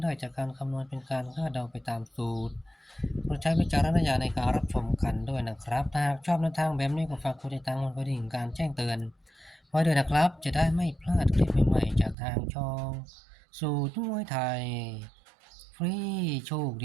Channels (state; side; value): drops out; left; at 12.2 s